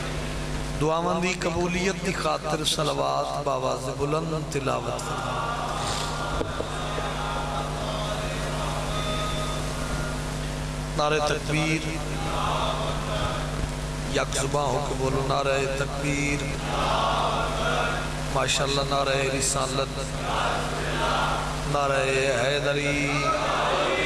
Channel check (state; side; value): identical; both; correlation 1.00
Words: دعاواں دی قبولیت دی خاطر صلوات باواز بلند تلاوت فرما۔ نعرہ تکبیر، یک زباں ہو کے بولو نعرہ تکبیر، ماشاءاللہ نعرہ رسالت، نعرہ حیدری۔